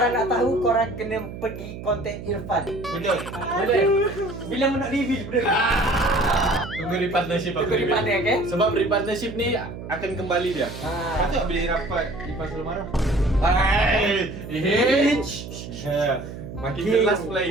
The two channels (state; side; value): noise; right; hum, 11 dB below the sound